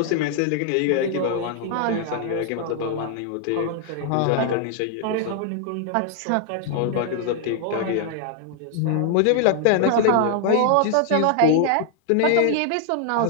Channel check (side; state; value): both; different; correlation 0.00